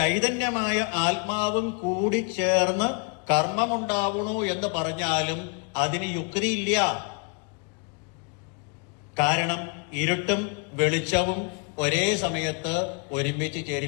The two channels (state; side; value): quieter; right; 36.6 dB